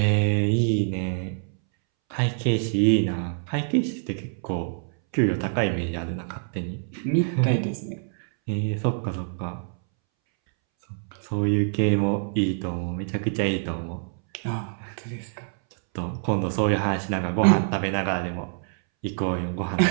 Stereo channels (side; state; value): left; silent; 61 dB below the other